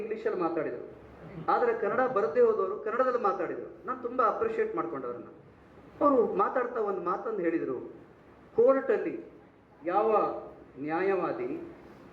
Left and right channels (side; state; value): both; identical; correlation 1.00